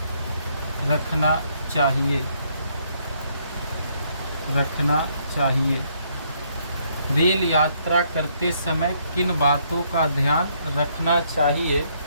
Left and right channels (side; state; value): both; inverted; correlation -0.70